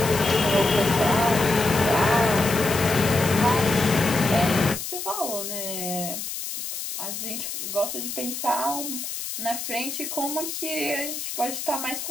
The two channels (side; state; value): left; noise; hiss, 6 dB below the sound